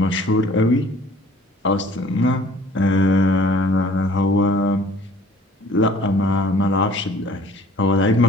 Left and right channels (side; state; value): both; normal; correlation 0.52